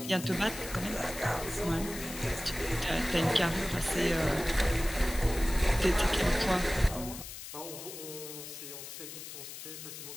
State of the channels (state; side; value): noise; left; hiss, 11 dB below the sound